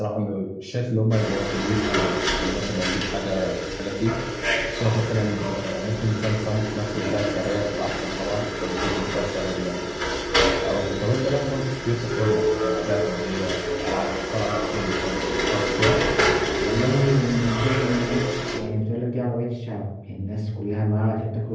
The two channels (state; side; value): identical; both; correlation 1.00